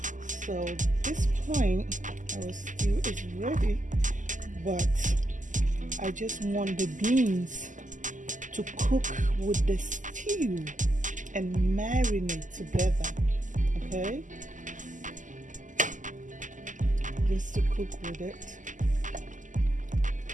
So at this point our stew is ready, but I just want the beans to cook with the stew and marinate together, okay? Just to cook with it.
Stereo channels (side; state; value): left; late; 0.37 ms